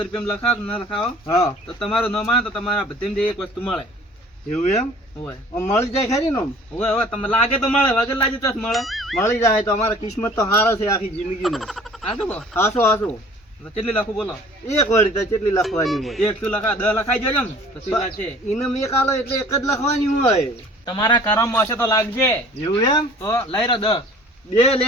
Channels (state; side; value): normal; both; correlation 0.50